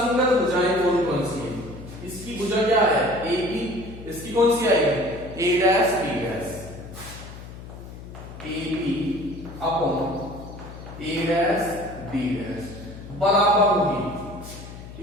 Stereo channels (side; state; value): left; noise; hum, 14 dB below the sound